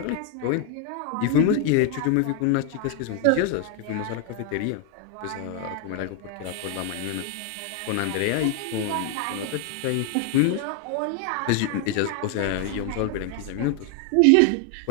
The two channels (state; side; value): different; both; correlation 0.00